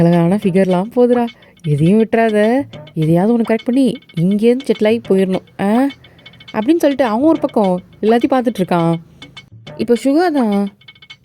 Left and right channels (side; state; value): both; identical; correlation 1.00